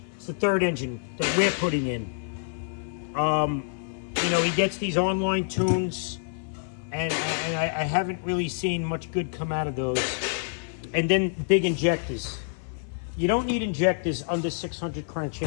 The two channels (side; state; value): right; silent; 57 dB below the other